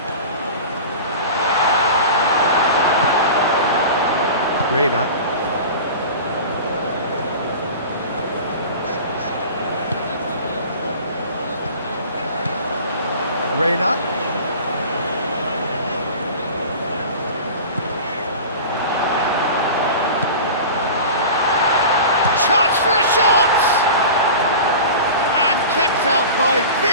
Reina. Reina. the shot! And kept out by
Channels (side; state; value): both; inverted; correlation -0.36